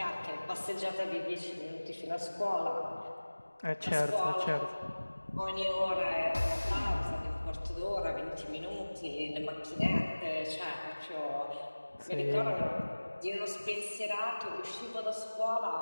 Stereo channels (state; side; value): inverted; both; correlation -1.00